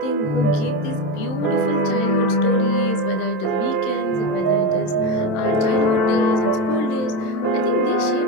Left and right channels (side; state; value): right; late; 27 ms